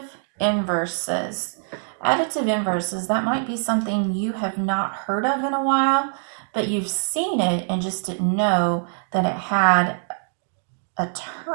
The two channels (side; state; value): left; silent; 63 dB below the other